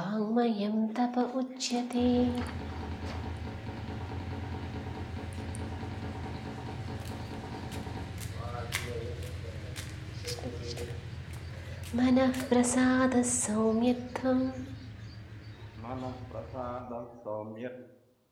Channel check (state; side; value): identical; both; correlation 1.00